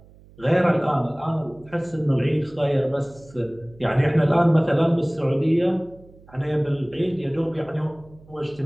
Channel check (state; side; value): noise; right; hum, 25 dB below the sound